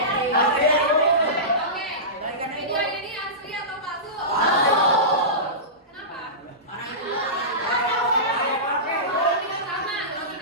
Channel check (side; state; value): both; normal; correlation -0.20